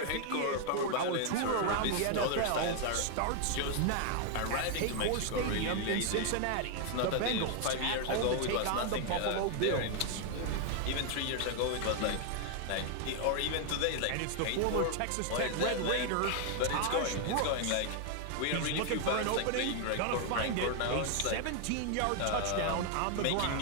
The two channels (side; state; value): both; different; correlation 0.00